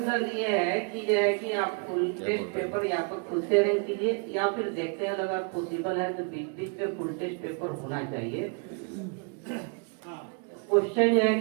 ये है कि जो है कि आप फुल टेस्ट पेपर या तो खुद से अरेंज कीजिए, या फिर देखते हैं अगर पॉसिबल है तो बीच में फुल टेस्ट पेपर होना चाहिए। क्वेश्चन जो है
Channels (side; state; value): left; quieter; 37.2 dB